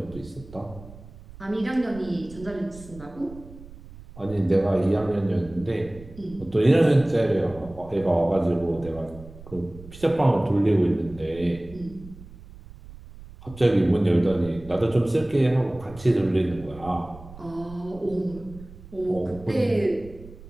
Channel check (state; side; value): noise; right; rumble, 18 dB below the sound